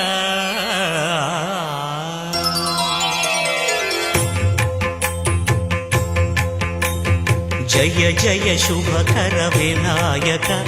జయ జయ శుభకర వినాయక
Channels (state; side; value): identical; both; correlation 1.00